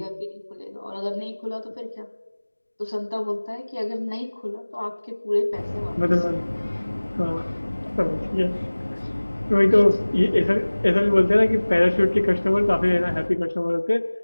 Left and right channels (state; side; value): inverted; both; correlation -1.00